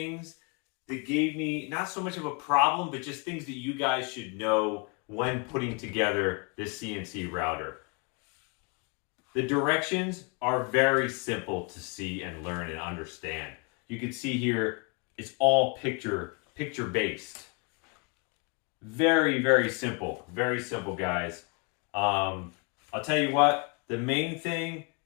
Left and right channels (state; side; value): quieter; right; 32.8 dB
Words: that gave me not so much of a problem, but just things that you guys should know when putting together this CNC router. The directions are very simple to see and learn and understand. You can see here, it's all picture based. Very simple, guys. I'll tell you what, the main thing